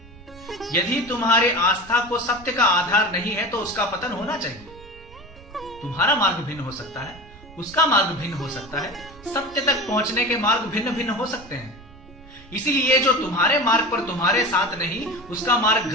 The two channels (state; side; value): noise; right; rumble, 21 dB below the sound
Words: यदि तुम्हारी आस्था को सत्य का आधार नहीं है तो उसका पतन होना चाहिए। तुम्हारा मार्ग भिन्न हो सकता है, उसका मार्ग भिन्न हो सकता है, सत्य तक पहुंचने के मार्ग भिन्न भिन्न हो सकते हैं। इसीलिए जो तुम्हारे मार्ग पर तुम्हारे साथ नहीं, उसका मार्ग